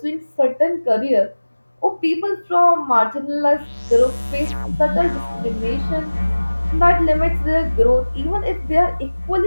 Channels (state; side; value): inverted; both; correlation -1.00